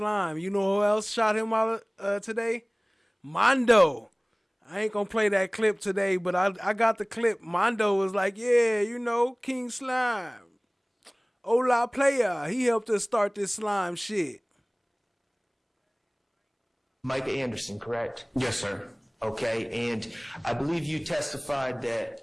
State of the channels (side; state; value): both; identical; correlation 1.00